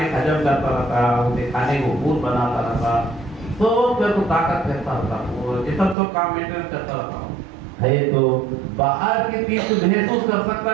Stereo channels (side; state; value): left; drops out; at 6.0 s